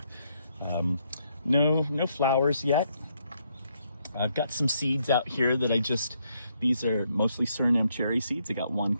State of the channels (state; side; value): inverted; both; correlation -0.74